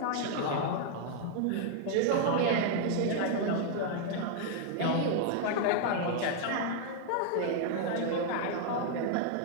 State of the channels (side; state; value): both; different; correlation 0.00